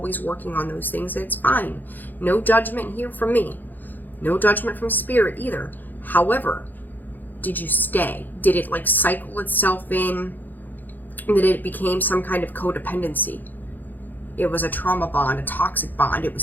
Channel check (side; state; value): right; late; 0.087 ms